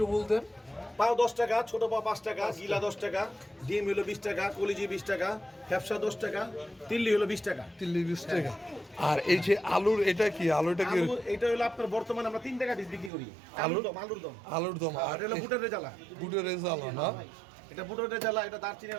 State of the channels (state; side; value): drops out; left; at 13.1 s